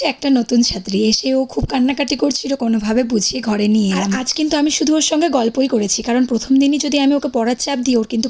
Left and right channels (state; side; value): identical; both; correlation 1.00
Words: একটা নতুন ছাত্রী, এসে ও খুব কান্নাকাটি করছিল, কোনোভাবে বুঝিয়ে ঘরে নিয়ে এলাম। আজ কিন্তু আমি শুধু ওর সঙ্গে গল্পই করেছি, কারণ প্রথম দিনই যদি আমি ওকে পড়ার চাপ দিই, ওর কিন্তু